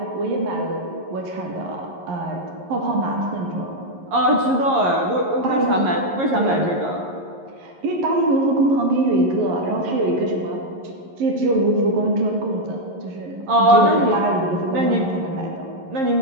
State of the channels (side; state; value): left; late; 11 ms